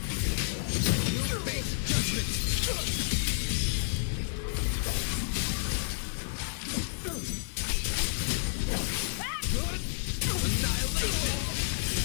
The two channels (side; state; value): right; silent; digital silence